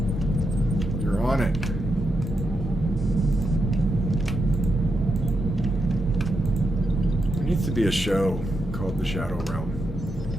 You're on it. There needs to be a show called the Shadow Realm.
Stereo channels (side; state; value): both; normal; correlation 0.84